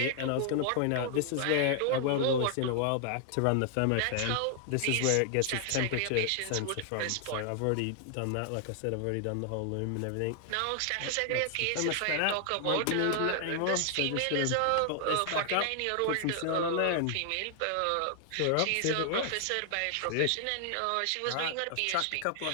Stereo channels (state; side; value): different; both; correlation 0.00